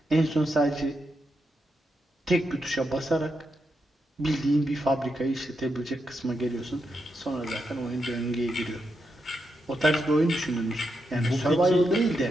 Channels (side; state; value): both; normal; correlation 0.84